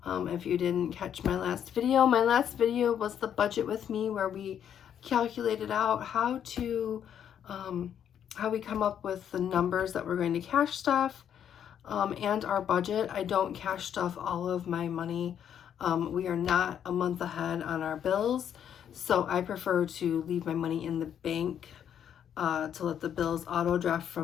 If you didn't catch my last video was the budget with me, where we calculated out how we come up with the numbers that we're going to cash stuff and our budget. I don't cash stuff all of my money. We are not a month ahead on our bills, so I prefer to leave my money in the bank to let the bills auto draft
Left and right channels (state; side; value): quieter; right; 9.1 dB